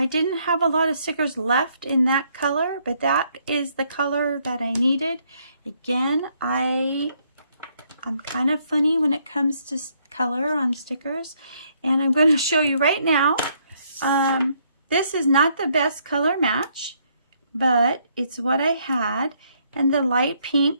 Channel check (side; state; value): both; inverted; correlation -0.70